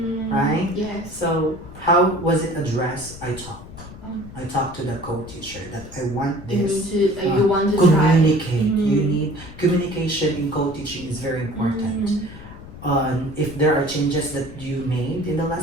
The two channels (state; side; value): noise; left; rumble, 15 dB below the sound